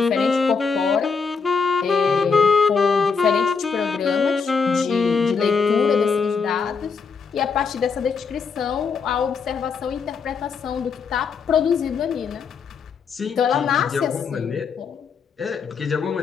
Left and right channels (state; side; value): quieter; right; 5.4 dB